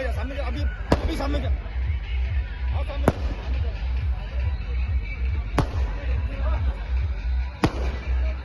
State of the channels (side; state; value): both; identical; correlation 1.00